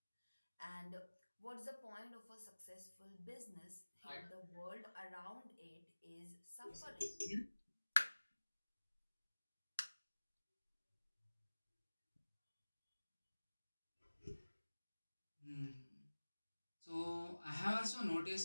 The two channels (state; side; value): inverted; both; correlation -1.00